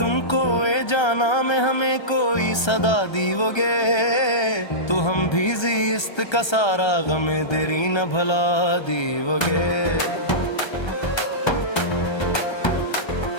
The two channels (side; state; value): right; late; 1.3 ms